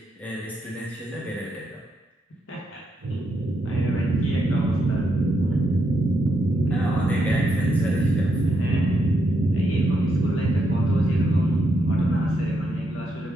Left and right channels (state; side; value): normal; both; correlation 0.80